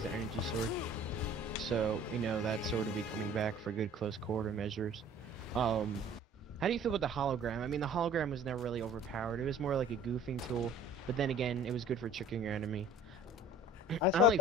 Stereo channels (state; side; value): normal; both; correlation 0.48